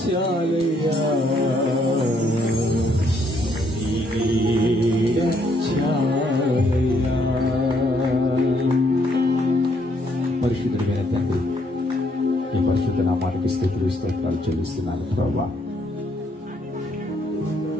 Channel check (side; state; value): both; normal; correlation 0.70